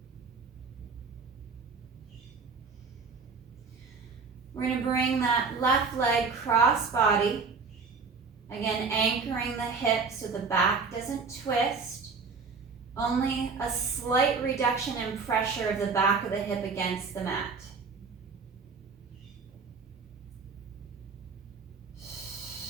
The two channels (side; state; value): left; quieter; 4.9 dB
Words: We're going to bring that left leg cross body, again anchoring the hip so the back doesn't twist, only a slight reduction in pressure of the back of the hip against the mat.